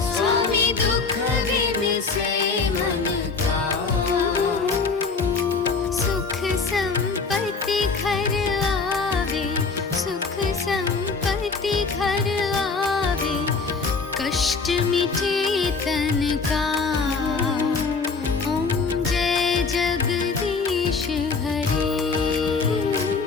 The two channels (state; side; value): quieter; right; 4.6 dB